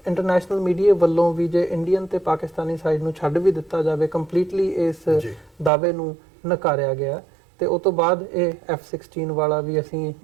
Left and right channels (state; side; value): drops out; left; at 5.7 s